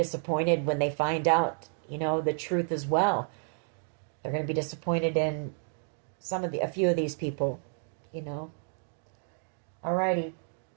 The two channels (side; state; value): left; silent; 57 dB below the other